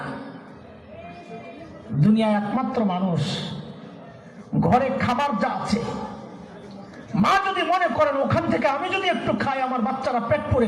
দুনিয়ায় একমাত্র মানুষ ঘরে খাবার যা আছে, মা যদি মনে করেন ওখান থেকে আমি যদি একটু খাই আমার বাচ্চারা পেট পরে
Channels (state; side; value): identical; both; correlation 1.00